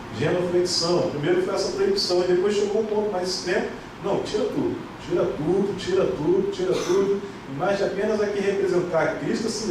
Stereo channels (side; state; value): both; identical; correlation 1.00